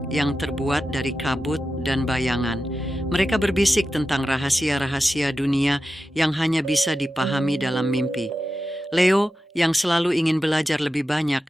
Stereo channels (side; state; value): both; normal; correlation 0.91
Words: yang terbuat dari kabut dan bayangan. Mereka berbisik tentang rahasia-rahasia dunia yang hanya bisa dipahami dalam mimpi. Leo, yang selalu ingin belajar lebih banyak,